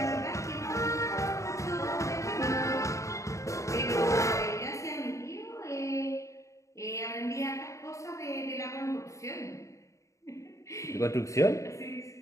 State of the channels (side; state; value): right; late; 0.15 ms